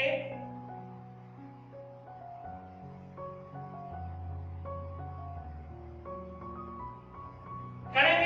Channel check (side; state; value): both; identical; correlation 1.00